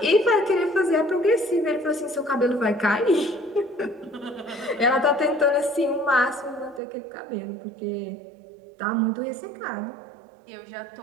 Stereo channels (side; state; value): left; drops out; at 6.8 s